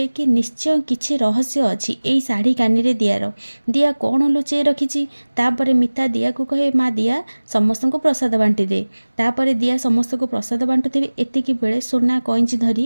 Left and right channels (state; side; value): inverted; both; correlation -1.00